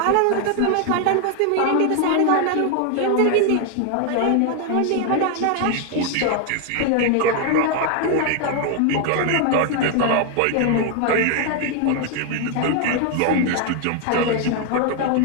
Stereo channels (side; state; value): both; different; correlation 0.01